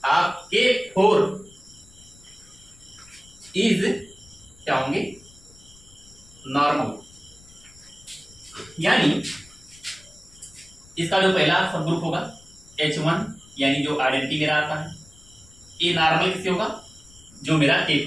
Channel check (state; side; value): noise; left; rumble, 24 dB below the sound